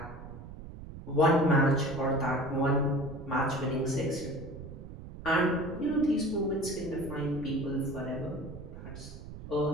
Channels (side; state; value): right; noise; rumble, 13 dB below the sound